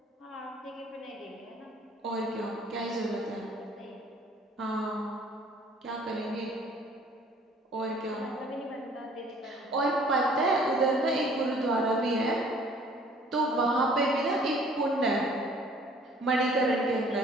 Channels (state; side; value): normal; both; correlation 0.55